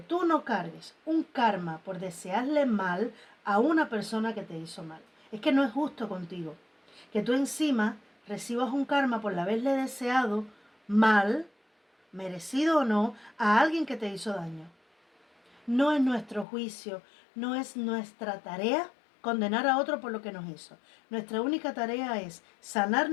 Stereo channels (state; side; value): drops out; right; at 16.4 s